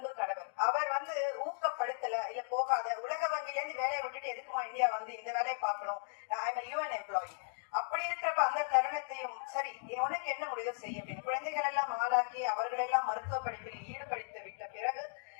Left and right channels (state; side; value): silent; right; digital silence